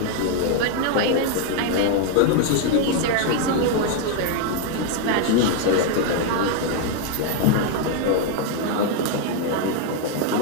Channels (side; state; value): both; different; correlation 0.01